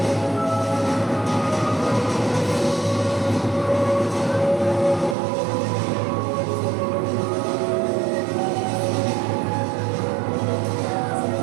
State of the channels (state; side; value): drops out; left; at 5.2 s